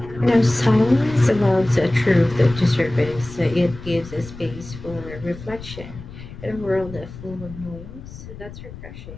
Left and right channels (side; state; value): left; noise; rumble, 14 dB below the sound